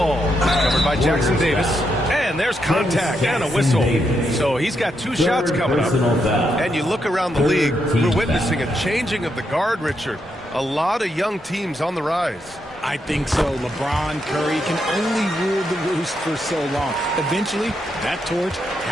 Covered by Jackson Davis. And there's contact and a whistle. So he's got 2 shots coming up. And you look around the league, we're witnessing a changing of the guard, Richard. A lot of young teams on the rise. I think so. LeBron, Curry can only rule the roost for so long. Eventually, that torch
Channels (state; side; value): normal; both; correlation 0.81